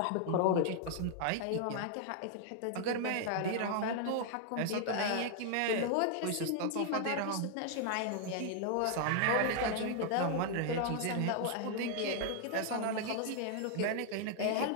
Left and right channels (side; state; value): both; different; correlation 0.00